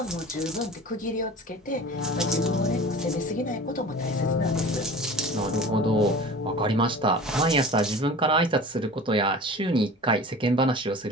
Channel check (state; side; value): normal; both; correlation 0.39